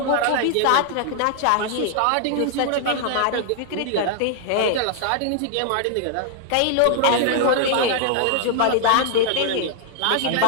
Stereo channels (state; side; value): different; both; correlation 0.00